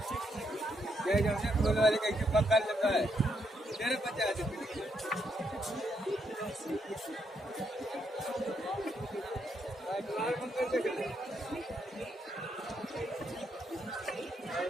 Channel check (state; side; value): normal; both; correlation 0.77